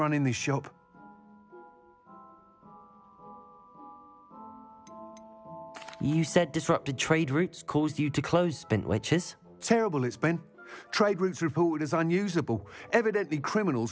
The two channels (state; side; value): identical; both; correlation 1.00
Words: this shop. You said disrupted trade routes caused you to close Spintwitches? Terrible it's been. Trade routes reported as unusable. Evidently